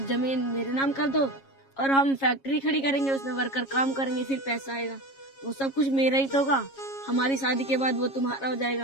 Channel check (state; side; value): late; right; 7.3 ms